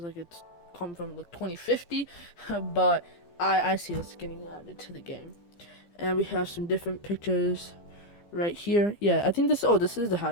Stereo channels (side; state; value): right; late; 15 ms